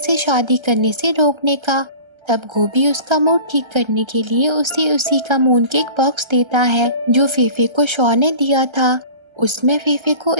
शादी करने से रोकने का। तब गोभी उसका मूड ठीक करने के लिए उसे उसी का मून केक बॉक्स देता है जो फेफे को शॉ ने दिया था। उसमें फेफे को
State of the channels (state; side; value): late; left; 1.3 ms